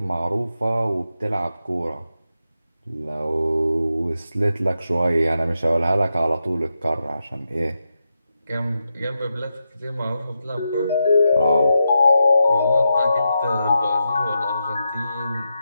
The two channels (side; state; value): both; inverted; correlation -0.87